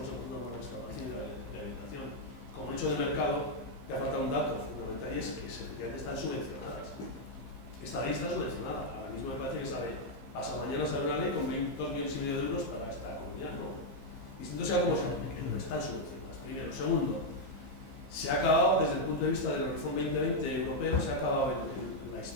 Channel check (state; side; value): late; right; 15 ms